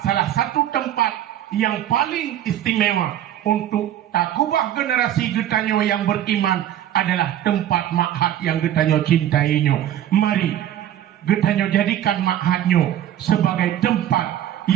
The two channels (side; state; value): left; quieter; 11.5 dB